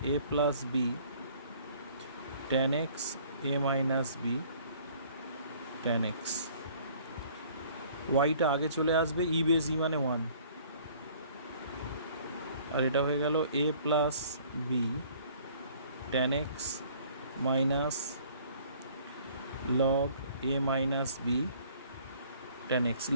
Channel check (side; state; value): both; inverted; correlation -0.55